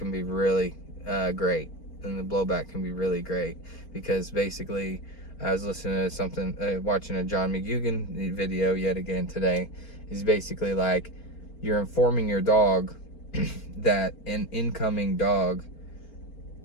be really great, and the blowback can be really great, because basically I was listening to watching a John McGugan video yet again today. He's basically like, you're informing your dog that an incoming dog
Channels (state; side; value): late; right; 4.4 ms